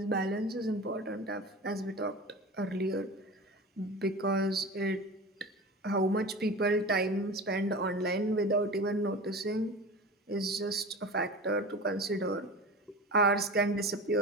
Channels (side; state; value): both; normal; correlation 0.32